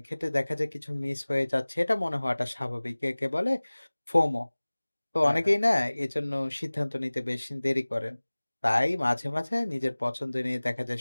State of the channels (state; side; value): inverted; both; correlation -1.00